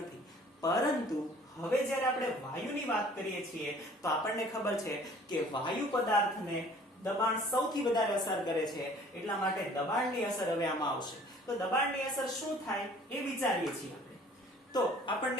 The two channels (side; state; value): both; normal; correlation 0.52